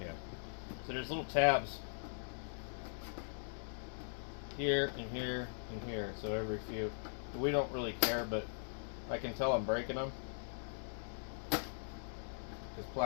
So there's little tabs here and here and here. So every few. We don't really care, but I can tell I'm breaking them. This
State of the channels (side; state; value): right; silent; digital silence